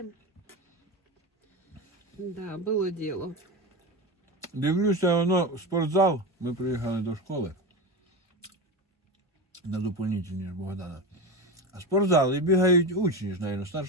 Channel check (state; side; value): normal; both; correlation 0.21